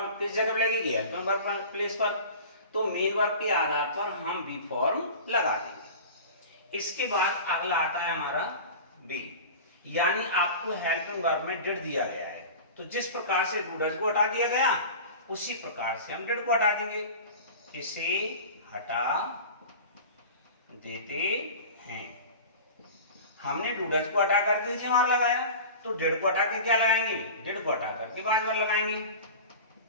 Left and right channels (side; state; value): both; inverted; correlation -0.35